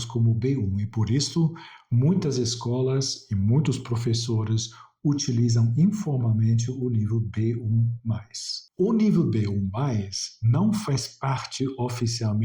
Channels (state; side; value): identical; both; correlation 1.00